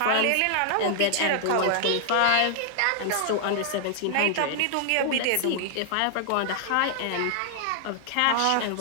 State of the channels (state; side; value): different; both; correlation -0.01